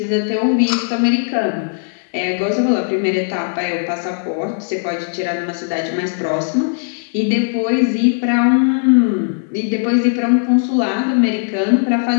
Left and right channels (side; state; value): right; silent; digital silence